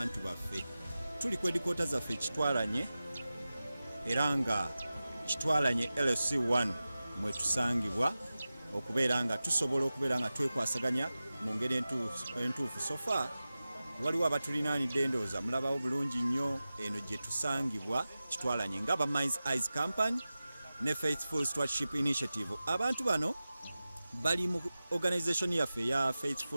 baffe. Tuli ku edikoota zaffe Kitwalanye era nga Kitwalanye LC1 mwe tusangibwa okubeera nga tusobola okubeera nga twekwasaganya mu ngeri entuufu. Sofa waliwo abatulinaanidde ndowooza mulabawo bulungi nnyo eno gye tusangibwa Kitwalanye nga Minds Eyes Company ne Faithful Stewardship Initiative. Abantu bano bali mu organisation yaffe ya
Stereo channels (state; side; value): inverted; both; correlation -0.95